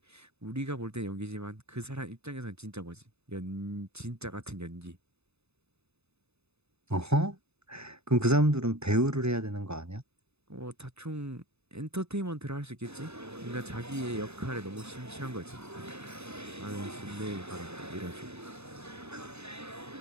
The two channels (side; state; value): left; late; 0.80 ms